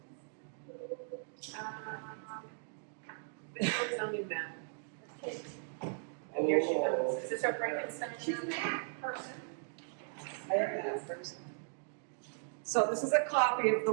It's on new map. And here she comes. Is this our Frankenstein? She's a math person. I have that first. So this is a copy of the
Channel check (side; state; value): left; silent; digital silence